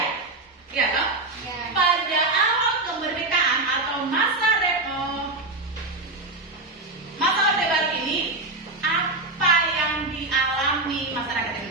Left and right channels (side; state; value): left; quieter; 3.0 dB